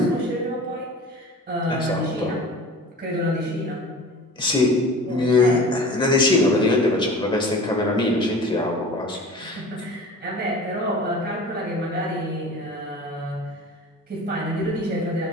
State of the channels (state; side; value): normal; both; correlation 0.39